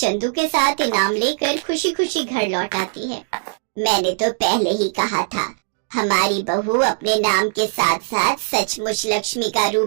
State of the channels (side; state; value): left; silent; digital silence